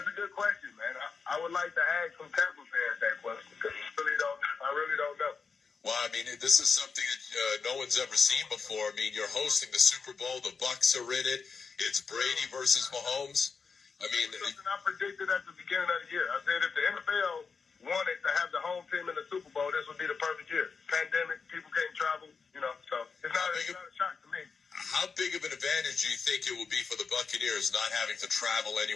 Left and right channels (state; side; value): quieter; right; 5.3 dB